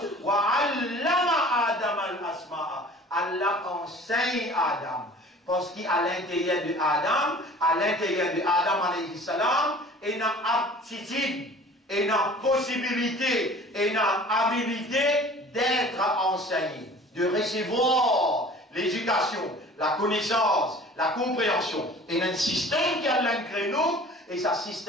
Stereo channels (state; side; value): normal; both; correlation 0.46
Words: Adam al-asma'a. Allah enseigne Adam. Parce qu'à l'intérieur de Adam alayhi salam, il y a aptitude, il y a possibilité, il y a habilité d'être enseigné, de recevoir l'éducation, la connaissance, la compréhension. Et il y a un système qui a créé nous, et ce